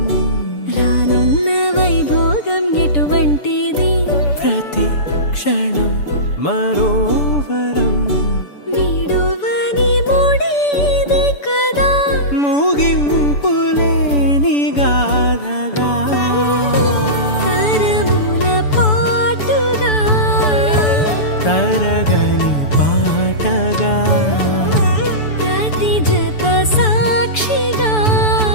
రానున్న వైభోగం ఎటువంటిది ప్రతి క్షణం మరోవరం వీడోవని మూడేది కదా ముగింపులేని గాథగా తరముల పాటుగా తరగని పాటగా ప్రతి జత సాక్షిగా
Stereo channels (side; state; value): right; late; 6.9 ms